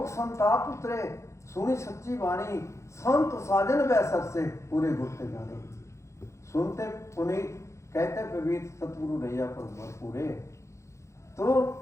संताप उतरे, सुनी सच्ची वाणी, संत साजन वैसर से पूरे गुरते जाने। सुनते पुनीत कहते पवित्र सतगुरु रैया पर पूरे। तो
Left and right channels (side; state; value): right; late; 0.14 ms